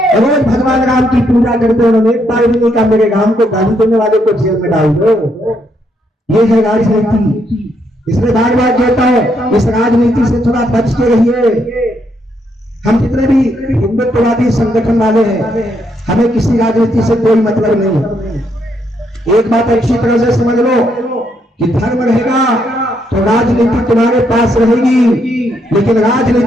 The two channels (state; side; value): normal; both; correlation 0.76